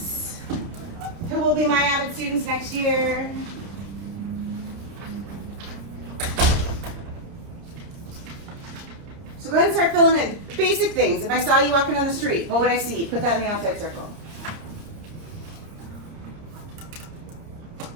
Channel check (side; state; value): left; late; 30 ms